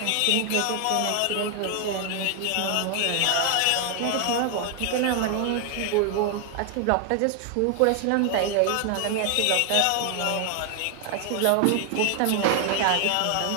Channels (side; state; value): both; different; correlation 0.00